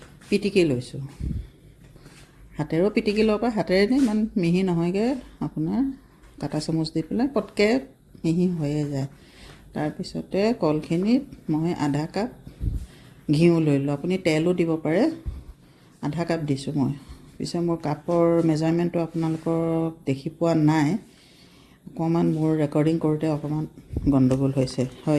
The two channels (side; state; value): both; identical; correlation 1.00